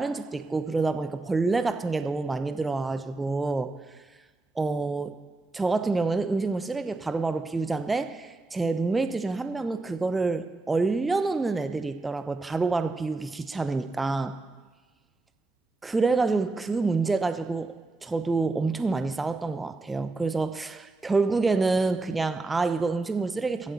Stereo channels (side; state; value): left; quieter; 3.3 dB